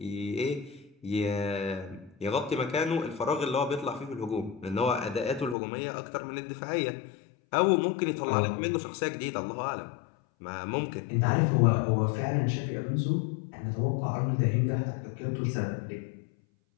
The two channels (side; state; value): right; drops out; at 5.6 s